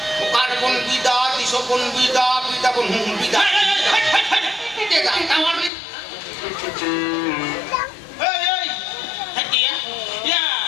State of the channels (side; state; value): right; drops out; at 5.7 s